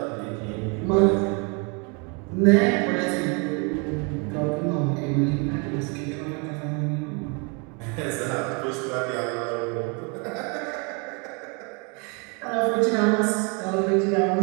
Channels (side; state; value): left; quieter; 33.2 dB